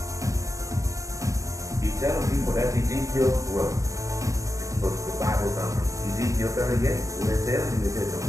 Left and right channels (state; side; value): late; left; 0.16 ms